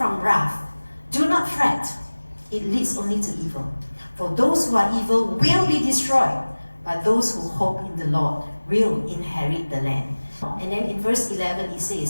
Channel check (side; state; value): both; inverted; correlation -1.00